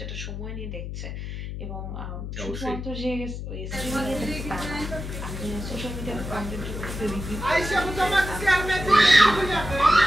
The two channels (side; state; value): left; noise; hum, 7 dB below the sound